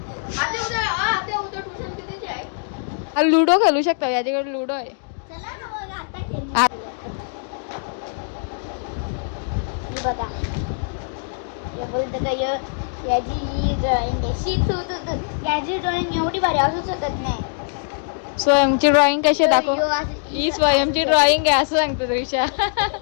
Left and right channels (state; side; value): silent; right; digital silence